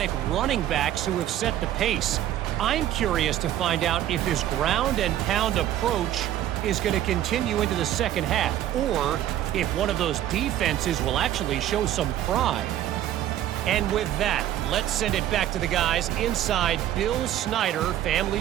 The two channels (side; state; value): left; quieter; 12.3 dB